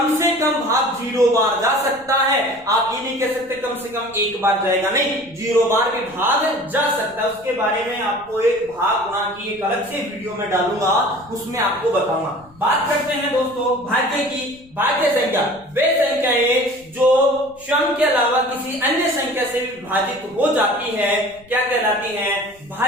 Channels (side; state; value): left; noise; rumble, 27 dB below the sound